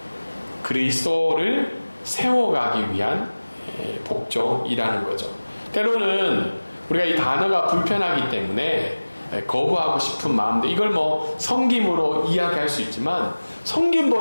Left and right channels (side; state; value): both; inverted; correlation -1.00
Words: 그리스도를 세워가기 위한 복종이라는 거죠. 때로는 우리가 이 단어가 불편하기 때문에 거부하고 싶은 마음도 이걸 섬김으로 이야기할 수 있지만